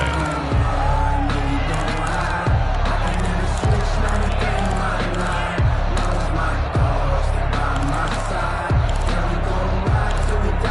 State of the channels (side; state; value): both; identical; correlation 1.00